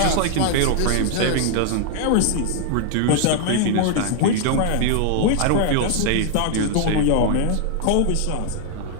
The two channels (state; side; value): different; both; correlation 0.00